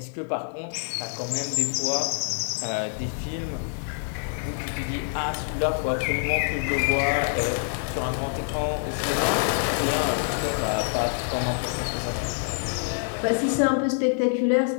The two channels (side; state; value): right; silent; digital silence